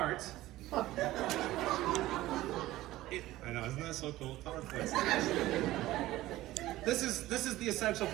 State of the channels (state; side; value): quieter; left; 16.3 dB